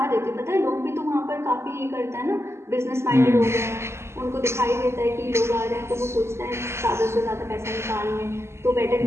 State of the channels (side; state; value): left; late; 0.13 ms